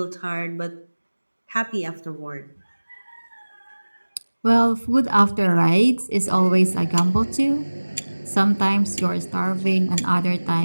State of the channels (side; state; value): both; inverted; correlation -1.00